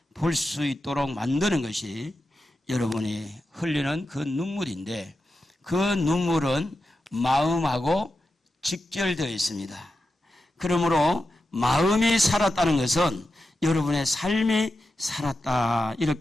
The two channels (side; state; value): both; normal; correlation 0.90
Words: 볼 수 있도록 만드는 것이 여러분이 흘리는 그 눈물인데, 그 눈물은 마음하고 직결되어 있습니다. 그러므로 마음이 살았다는 것은 여러분의 삶이 살았다,